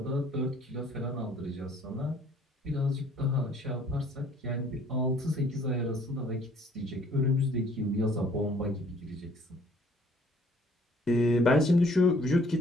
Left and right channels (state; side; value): normal; both; correlation 0.58